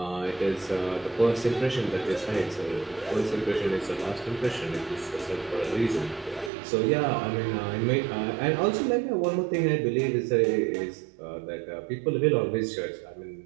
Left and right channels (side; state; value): left; drops out; at 6.5 s